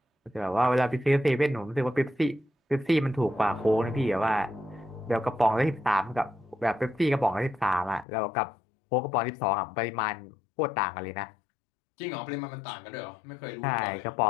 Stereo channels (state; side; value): drops out; right; at 8.1 s